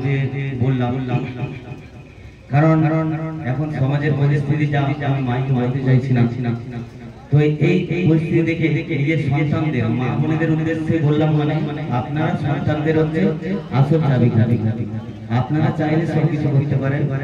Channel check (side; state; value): both; identical; correlation 1.00